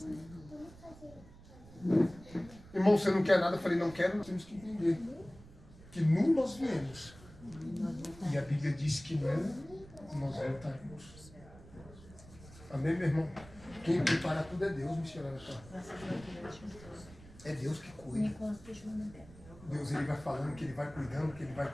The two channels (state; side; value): noise; right; rumble, 20 dB below the sound